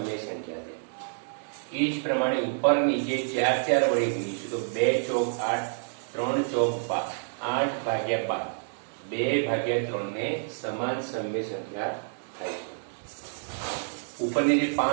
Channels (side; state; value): left; silent; digital silence